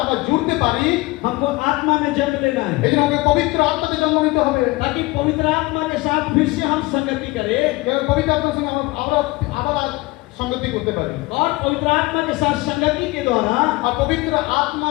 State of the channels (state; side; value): quieter; right; 22.0 dB